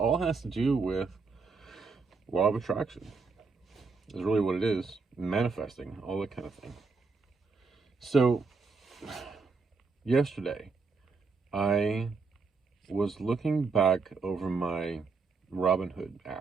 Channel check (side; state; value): left; quieter; 4.5 dB